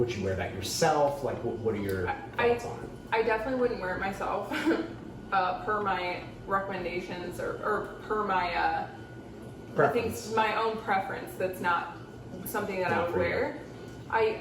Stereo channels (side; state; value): both; identical; correlation 1.00